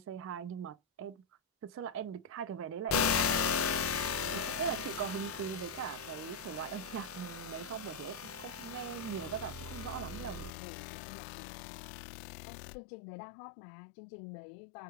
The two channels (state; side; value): drops out; right; at 10.5 s